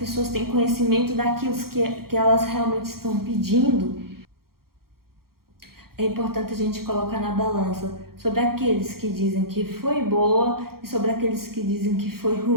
têm conhecimento daquilo que elas realmente estão pedindo? É importante a gente colocar na balança sobre aqueles que dizem que foi boa e sobre aqueles que dizem que foi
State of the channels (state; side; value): late; left; 0.93 ms